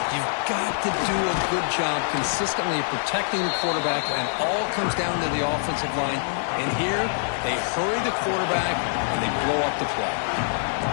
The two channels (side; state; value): right; silent; 62 dB below the other